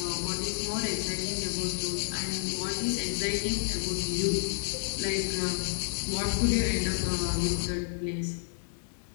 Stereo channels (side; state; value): right; silent; 58 dB below the other